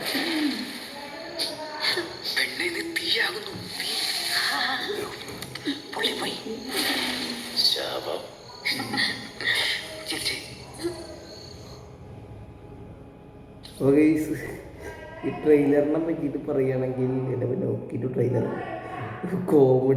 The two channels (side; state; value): both; identical; correlation 1.00